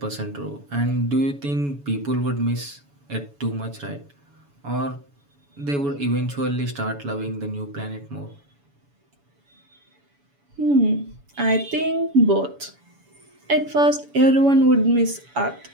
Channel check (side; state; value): left; late; 7.1 ms